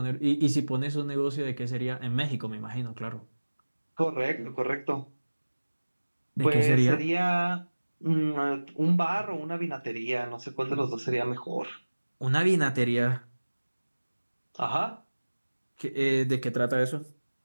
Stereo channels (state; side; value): inverted; both; correlation -1.00